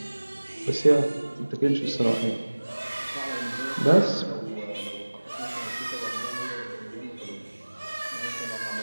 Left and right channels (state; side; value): inverted; both; correlation -1.00